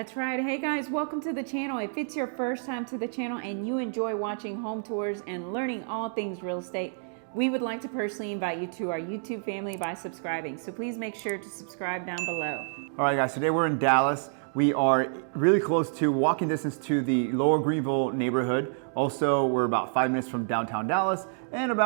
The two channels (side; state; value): left; silent; digital silence